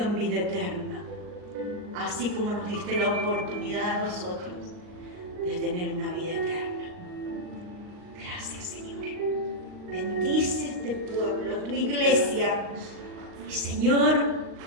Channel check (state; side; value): late; left; 39 ms